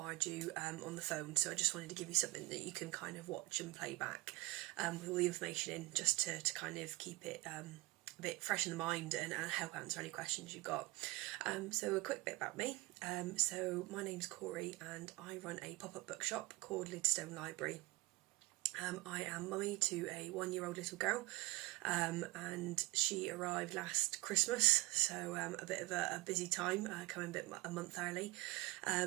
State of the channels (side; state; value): left; quieter; 21.4 dB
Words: you on the phone, so I just wanted to give you something that you can kind of watch and play back with all the information in, just to kind of keep it a bit fresh in the mind and help answer any questions you've got. So a quick bit about me. So my name's Corey and I run a pop-up bookshop called Lidstone Library. I am mummy to a 1-year-old little girl, and she arrived last Christmas, so a bit of a busy time, coming a month early.